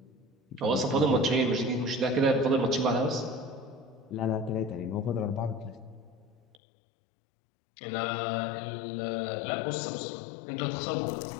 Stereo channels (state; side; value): drops out; right; at 6.6 s